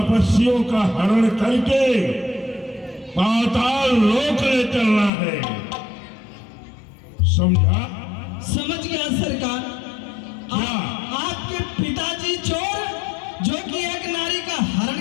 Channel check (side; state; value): right; drops out; at 5.1 s